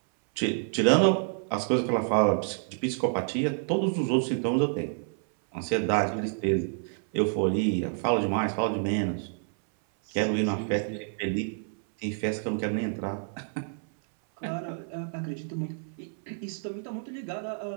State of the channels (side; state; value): left; silent; 59 dB below the other